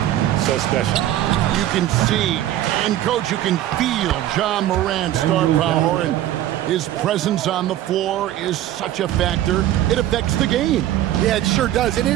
so special. You can see, and coach, you can feel John Morant's star power, and his presence on the floor is such a factor. It affects the game. Yeah, it sure does. And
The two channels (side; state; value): left; quieter; 13.0 dB